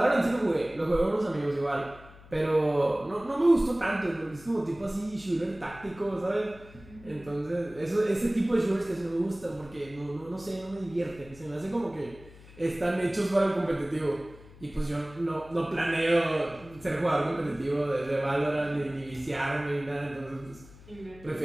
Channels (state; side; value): noise; left; hum, 21 dB below the sound